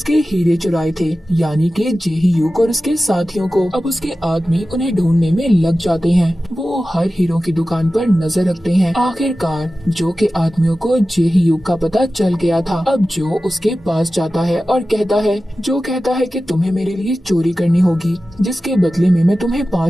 हीरे चुराए थे, यानी कि जेही युग और उसके साथियों को। अब उसके आदमी उन्हें ढूंढने में लग जाते हैं। वो हर हीरो की दुकान पर नजर रखते हैं। आखिरकार जो के आदमियों को जेही युग का पता चल गया था। अब जो उसके पास जाता है और कहता है कि तुम्हें मेरे लिए चोरी करनी होगी, जिसके बदले में मैं तुम्हें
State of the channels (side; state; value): both; normal; correlation 0.95